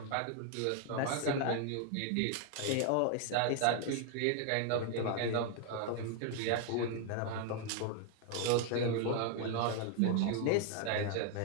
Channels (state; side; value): different; both; correlation 0.00